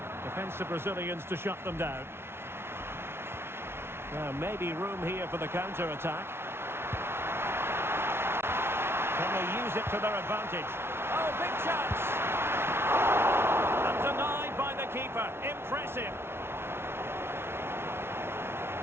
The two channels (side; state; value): left; late; 0.12 ms